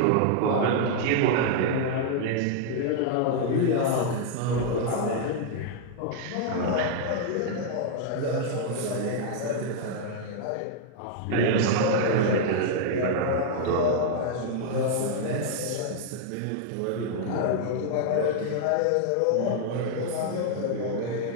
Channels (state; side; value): different; both; correlation -0.01